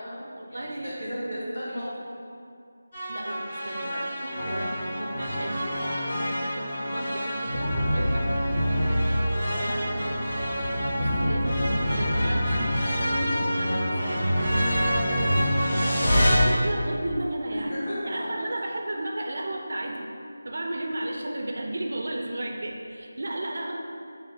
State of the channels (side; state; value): both; inverted; correlation -0.94